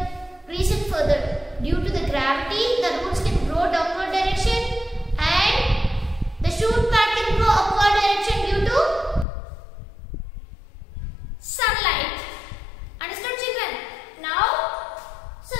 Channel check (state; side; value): drops out; right; at 9.2 s